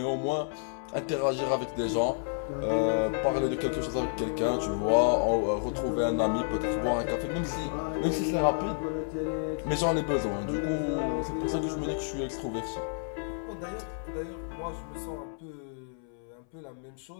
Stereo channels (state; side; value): silent; right; 58 dB below the other